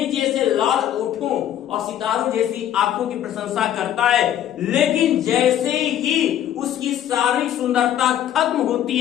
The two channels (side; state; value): right; quieter; 11.1 dB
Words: जैसे लाल ओठों और सितारों जैसी आंखों की प्रशंसा करता है, लेकिन जैसे ही उसकी सारी सुंदरता खत्म होती